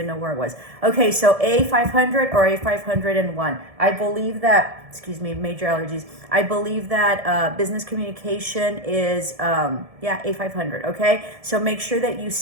know where it was. Okay, so A500 or A501. I believe that, major allergies. I believe that business communication is, A500, okay? So make sure that you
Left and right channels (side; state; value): left; late; 1.7 ms